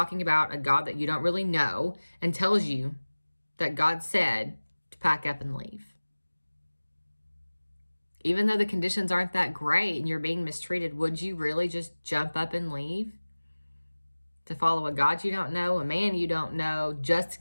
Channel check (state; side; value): inverted; both; correlation -1.00